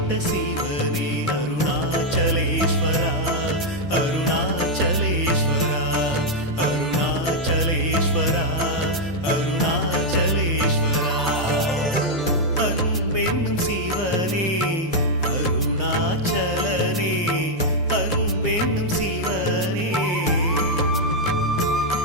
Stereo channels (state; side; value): normal; both; correlation -0.02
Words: சிவனே அருணாச்சலேஸ்வரா அருணாச்சலேஸ்வரா அருணாச்சலேஸ்வரா அருணாச்சலேஸ்வரா அன்பென்னும் சிவனே அருணாச்சலனே அன்பென்னும் சிவனே